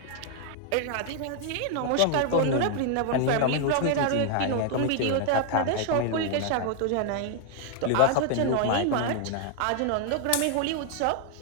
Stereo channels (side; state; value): both; different; correlation 0.00